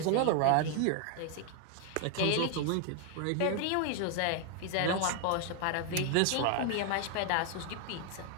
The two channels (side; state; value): both; different; correlation 0.00